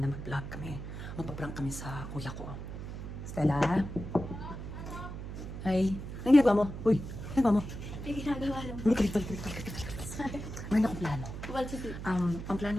na mag-vlog kami. Magpa-prank kami sa kuya ko. Stella? Ay, anong ginagawa mo? Uy, anong ginagawa mo? May ginagawa lang. Hindi, kalit. Mayroon akong plano. Well, sige. Ang plano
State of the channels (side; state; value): right; noise; hum, 8 dB below the sound